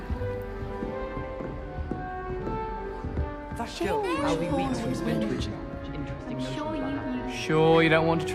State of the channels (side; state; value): both; identical; correlation 1.00